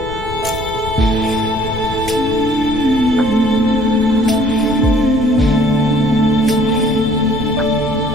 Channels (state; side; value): noise; left; rumble, 10 dB below the sound